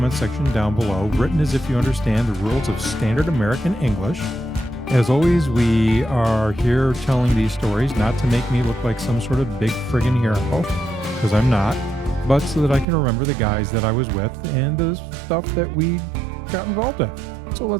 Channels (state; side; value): drops out; left; at 12.9 s